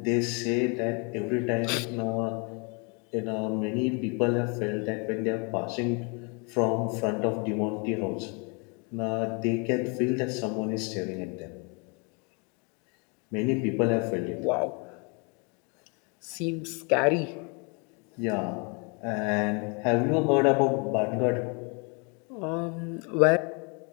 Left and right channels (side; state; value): right; quieter; 34.0 dB